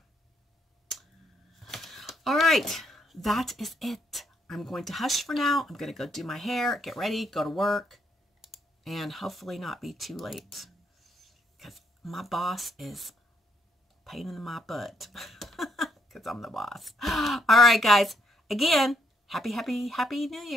All right, that is it. I'm going to hush for now. I'm going to go do my hair, get ready, go to work, and hopefully not be too late. Because my boss is a pain in my butt. Because I'm the boss. All right, guys. Again, Happy New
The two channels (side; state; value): both; normal; correlation 0.72